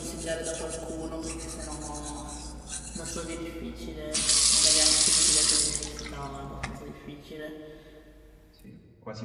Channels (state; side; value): identical; both; correlation 1.00